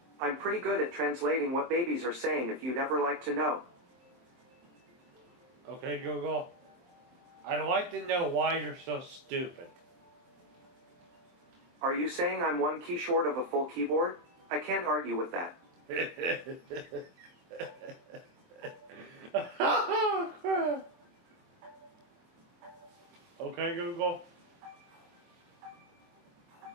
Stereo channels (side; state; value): left; late; 23 ms